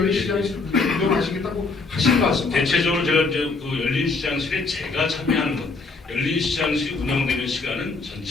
시장실을 운영하시겠다고 하신 말씀 대체적으로 제가 이제 그 열린 시장실에 제가 참여하는 것, 열린 시장실이 운영되는 시간은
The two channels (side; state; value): right; quieter; 3.9 dB